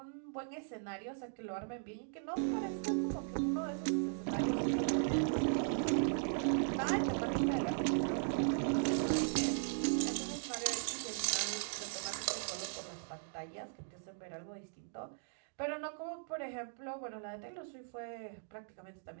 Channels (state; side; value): silent; left; digital silence